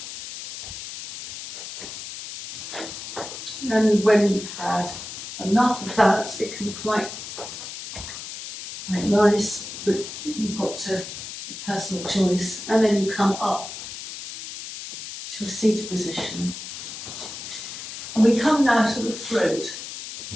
And when you've had enough of that, it can be quite nice, but you've got to personal choice. And then you come up to a seated position. And we come now to the throat.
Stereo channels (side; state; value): left; noise; hiss, 9 dB below the sound